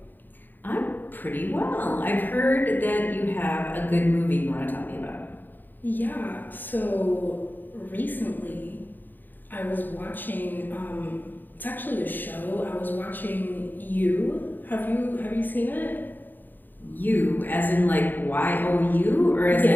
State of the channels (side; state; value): right; late; 0.090 ms